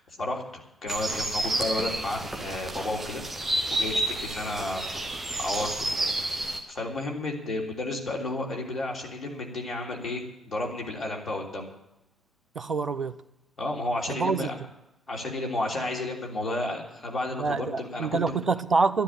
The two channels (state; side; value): normal; both; correlation 0.72